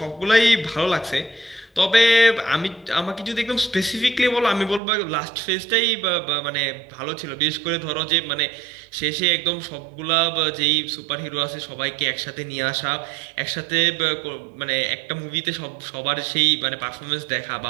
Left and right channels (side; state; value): left; drops out; at 4.8 s